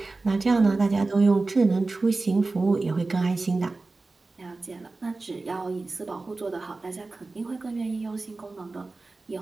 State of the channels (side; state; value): left; quieter; 3.5 dB